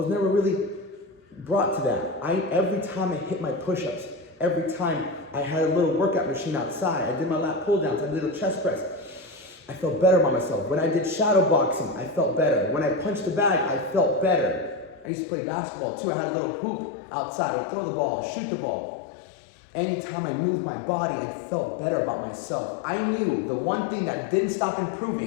never really brought to that. Every time I hit my push-ups, every time I had a little workout machine outside, I did my lat pull-downs, I did a little chest press, I felt better about myself. When I did shadow boxing, I felt better. When I punched the bag, I felt better. I used to play basketball too. I had a little hoop outside. I would throw the ball, shoot the ball. Anytime I moved my body, I felt better about myself. I knew the one thing that didn't stop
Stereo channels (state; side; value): drops out; right; at 15.1 s